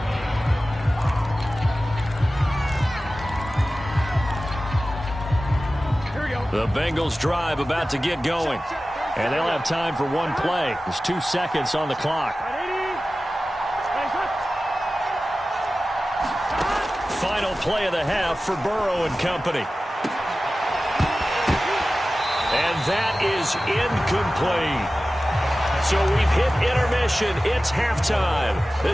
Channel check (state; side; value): normal; both; correlation 0.95